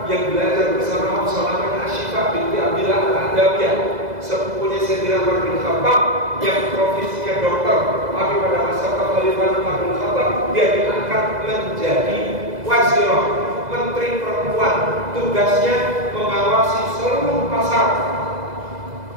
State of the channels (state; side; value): late; left; 2.0 ms